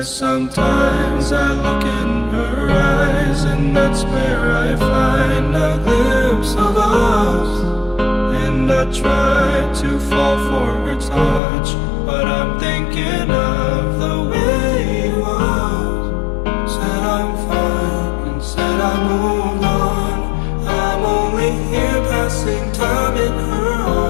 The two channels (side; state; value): right; drops out; at 11.4 s